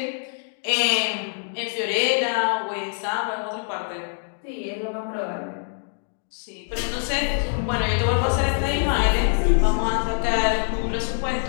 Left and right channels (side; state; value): right; silent; digital silence